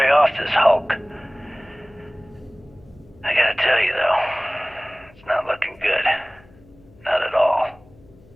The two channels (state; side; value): noise; left; hum, 26 dB below the sound